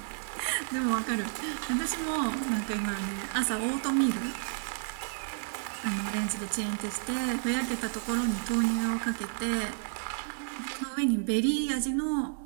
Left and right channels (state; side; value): silent; left; digital silence